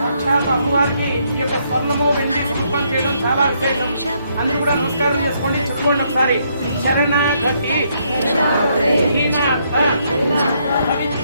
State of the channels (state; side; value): inverted; both; correlation -0.73